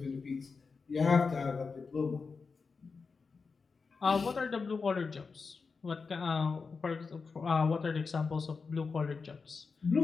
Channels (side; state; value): right; quieter; 4.8 dB